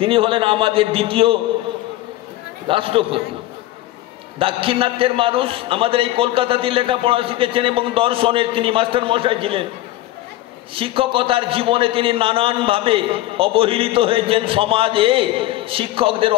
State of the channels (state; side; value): quieter; right; 15.8 dB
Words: হলেন আমাদের দ্বিতীয় রাষ্ট্রপতি। দাক্ষিণাত্যের মানুষ আমাদের এই কলকাতাতে লেখাপড়া শিখেছেন এবং দর্শনের তিনি মাস্টার মশাই ছিলেন। শিক্ষকতার জীবনে তিনি নানানভাবে অবহেলিত হয়েছেন। সমাজে শিক্ষকদের